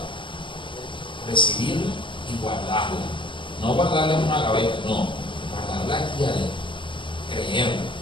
Recibirla y guardarla. No guardarla en una gaveta, no. Guardarla aquí adentro. Creerla,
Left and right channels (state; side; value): late; right; 0.24 ms